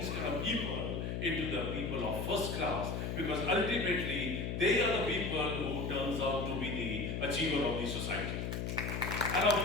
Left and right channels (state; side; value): noise; left; hum, 2 dB below the sound